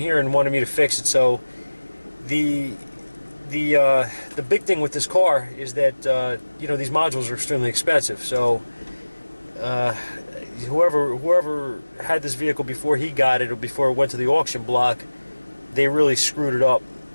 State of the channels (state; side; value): inverted; both; correlation -1.00